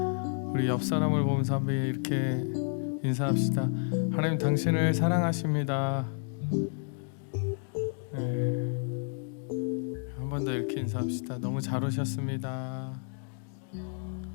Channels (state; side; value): silent; right; 56 dB below the other